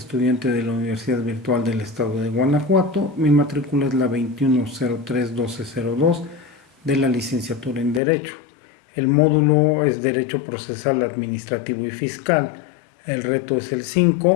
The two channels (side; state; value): right; drops out; at 8.0 s